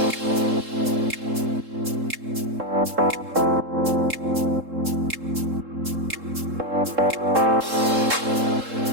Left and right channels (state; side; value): late; left; 3.7 ms